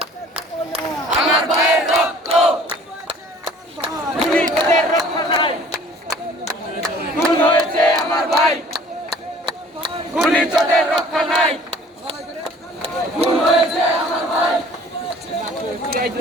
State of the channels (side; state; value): both; normal; correlation 0.52